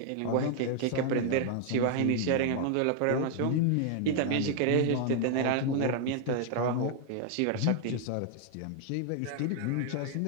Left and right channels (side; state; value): both; different; correlation 0.00